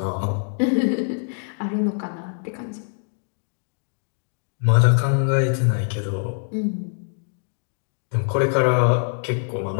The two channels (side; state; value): right; silent; 63 dB below the other